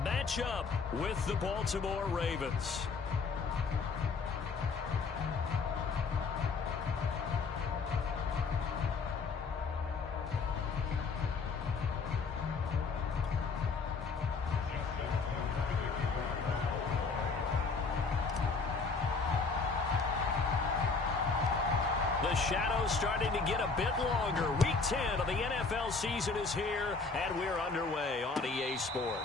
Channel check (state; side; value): quieter; right; 4.5 dB